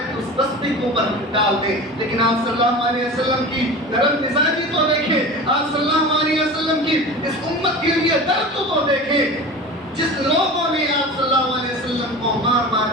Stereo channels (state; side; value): normal; both; correlation 0.33